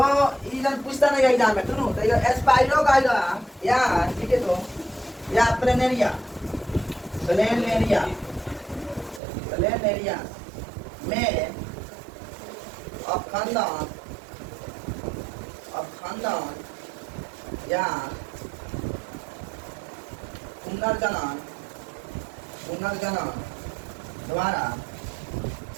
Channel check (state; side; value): drops out; left; at 9.2 s